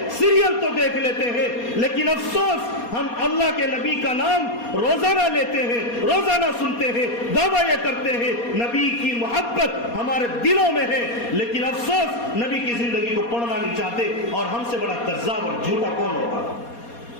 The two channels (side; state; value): right; late; 4.2 ms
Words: سیریل تو دیکھ لیتے ہیں, لیکن افسوس ہم اللہ کے نبی کا نام روزانہ لیتے ہیں, روزانہ سنتے ہیں, دعویٰ یہ کرتے ہیں, نبی کی محبت ہمارے دلوں میں ہے, لیکن افسوس نبی کی زندگی کو پڑھنا نہیں چاہتے. اور ہم سے بڑا کذاب اور جھوٹا کون ہوگا؟